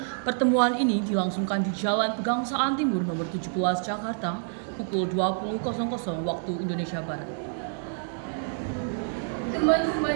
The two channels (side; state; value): left; silent; digital silence